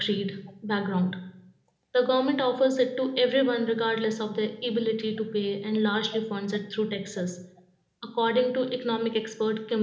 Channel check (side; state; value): both; identical; correlation 1.00